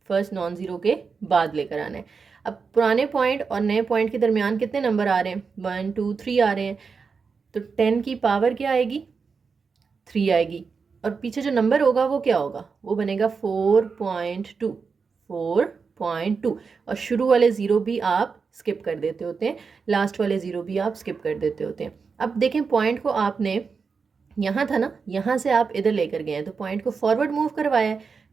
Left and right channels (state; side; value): quieter; left; 5.3 dB